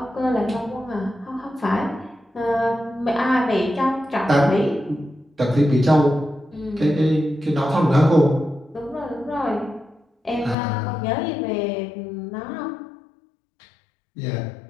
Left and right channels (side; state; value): right; drops out; at 10.6 s